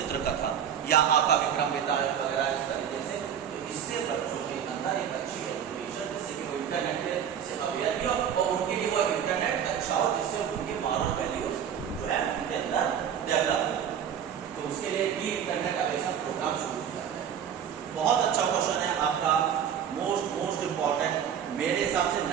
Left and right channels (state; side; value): quieter; left; 8.6 dB